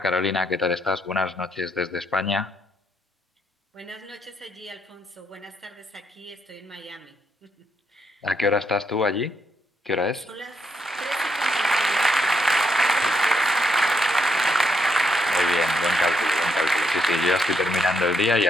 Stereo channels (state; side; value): normal; both; correlation 0.77